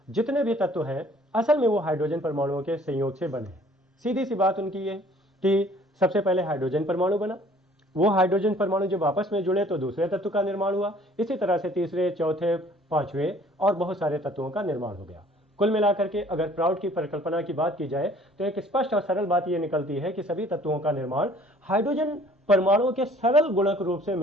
जितने भी तत्व हैं असल में वो हाइड्रोजन परमाणुओं के संयोग से बने हैं। सीधी सी बात उनकी ये कि सबसे पहले हाइड्रोजन परमाणु बना, वो हाइड्रोजन परमाणु जब आपस में जुड़े तो दूसरे तत्व का निर्माण हुआ। इसी तरह से तीसरे, चौथे, पांचवें और बहुत सारे तत्वों का निर्माण हो गया। कुल मिलाकर के अगर प्राउट की परिकल्पना की बात की जाए तो एक स्पष्ट और सरल बात यह निकलती है कि सभी तत्वों का निर्माण हाइड्रोजन परमाणुओं के सरल गुणक रूप से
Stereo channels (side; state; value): both; normal; correlation 0.55